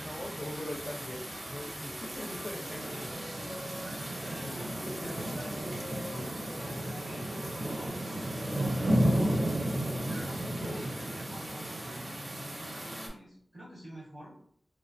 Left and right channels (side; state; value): both; normal; correlation 0.95